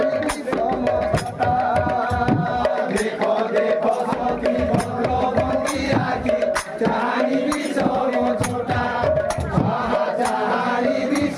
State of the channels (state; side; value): identical; both; correlation 1.00